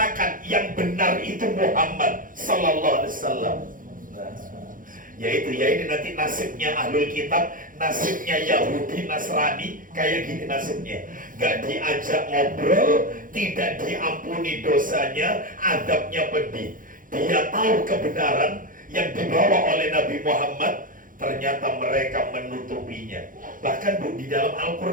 yang benar itu Muhammad Sallallahu Alaihi Wasallam. Yaitu ya ini nanti nasibnya ahlul kitab, nasibnya Yahudi Nasrani kayak gini nasibnya. Gak diajak ngobrol, tidak diampuni dosanya, adabnya pedih. Dia tahu kebenaran yang dibawa oleh Nabi Muhammad, ternyata mereka menutupinya. Bahkan Bu, di dalam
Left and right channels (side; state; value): left; late; 0.39 ms